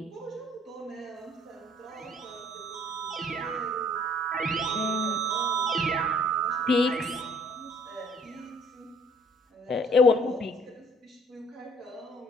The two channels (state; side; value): normal; both; correlation 0.58